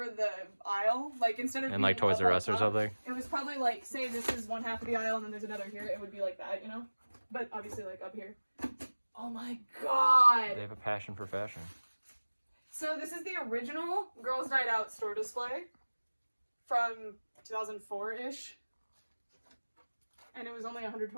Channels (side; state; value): both; inverted; correlation -1.00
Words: the aisle, like instead of And like Toys R Us or something? It was probably like, say this is one half of the aisle and then there's another here. It would be like that, you know? But obviously like up here. Oh my god! They have a passion for fashion. So this is the original Girls' Night Out store display from 2004-ish. And it was only